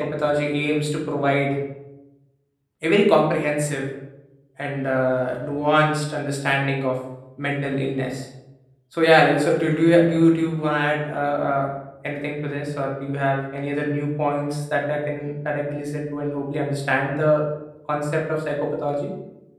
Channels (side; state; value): both; identical; correlation 1.00